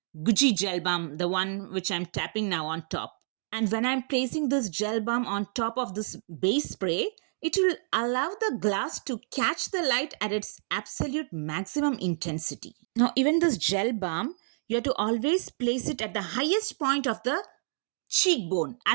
Gucci gel balm, the one which I'm tapping now on top. And when I'm placing this gel balm on top of this base spray, it will allow the glass to catch the light at its absolute maximum intensity. Now, even this gel balm, you have to always place it at the highest point of the cheekbone,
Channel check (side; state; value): left; silent; digital silence